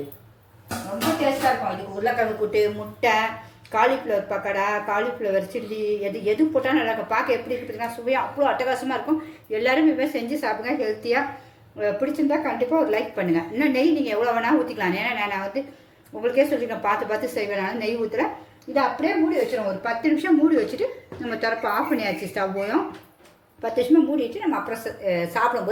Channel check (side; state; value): both; identical; correlation 1.00